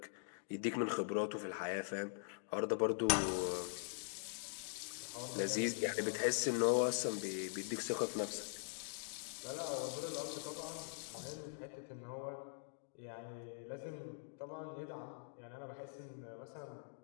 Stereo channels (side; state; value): right; silent; digital silence